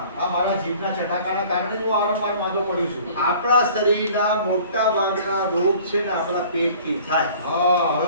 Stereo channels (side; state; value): both; inverted; correlation -0.49